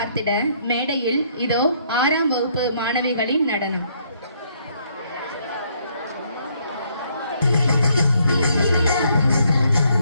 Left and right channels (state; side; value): inverted; both; correlation -0.69